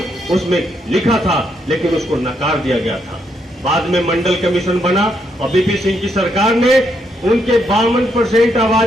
उसमें लिखा था, लेकिन उसको नकार दिया गया था। बाद में मंडल कमीशन बना और बीपी सिंह की सरकार ने उनके 52%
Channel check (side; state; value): both; normal; correlation 0.76